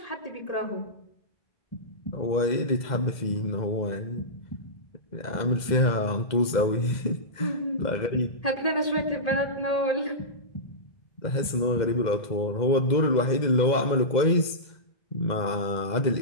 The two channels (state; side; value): late; right; 2.0 ms